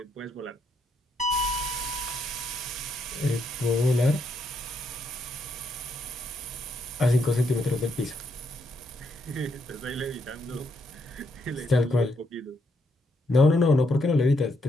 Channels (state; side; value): normal; both; correlation 0.75